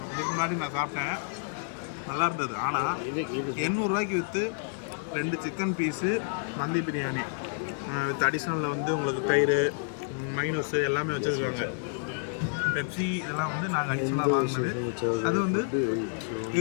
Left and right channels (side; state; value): right; silent; 58 dB below the other